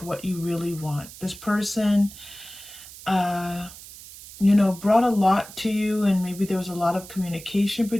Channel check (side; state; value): right; noise; hiss, 16 dB below the sound